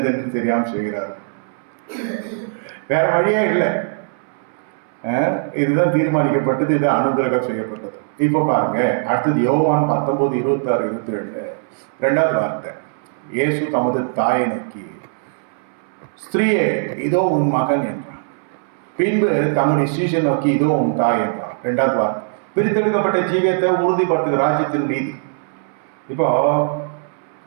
தெரியாம செய்கிறார்கள். வேற வழியே இல்லை. இதுதான் தீர்மானிக்கப்பட்டது, இது அனுகிரகம் செய்யப்பட்டது. இப்போ பாருங்க, அடுத்தது யோவான் 19:26-27 2வது வார்த்தை. இயேசு தமது தாயை நோக்கி, ஸ்திரீயே இதோ உன் மகன் என்றார். பின்பு தம்முடைய சீஷன் நோக்கி, இதோ உன் தாய் என்றார். 2வது வார்த்தை. பிரித்தெடுக்கப்பட்ட ஜீவியத்தை உறுதிப்படுத்துகிற ராஜ்யத்தின் நீதி. இப்போ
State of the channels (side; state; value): left; silent; 63 dB below the other